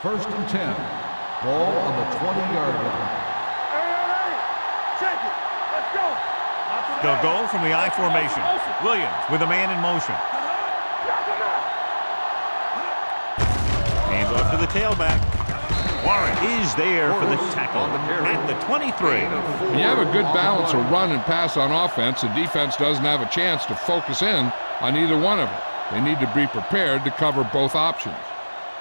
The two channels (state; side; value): inverted; both; correlation -1.00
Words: First and 10. Ball on the 20-yard line. Hey. Check it. Let's go. They'll go from the I formation. Williams with a man in motion. Hands off to the tailback. Warren is there for the tackle at the 23. When you have a good balance of run and pass on offense, the defense doesn't have a chance to focus in on either one of them. They need to be prepared to cover both options.